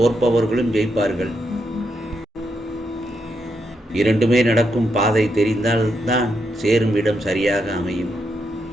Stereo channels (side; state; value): both; normal; correlation 0.81